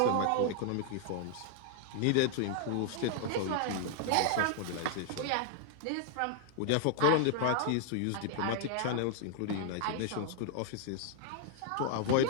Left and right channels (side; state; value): both; different; correlation 0.00